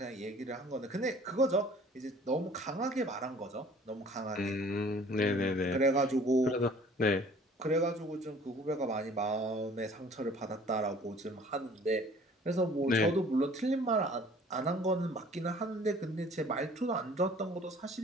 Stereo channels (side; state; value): both; normal; correlation 0.52